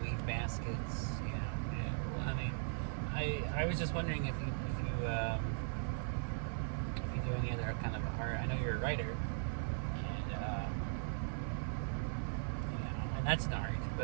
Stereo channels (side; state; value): left; silent; 52 dB below the other